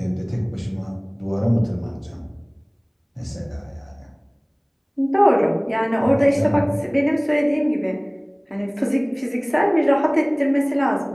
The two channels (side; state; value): both; identical; correlation 1.00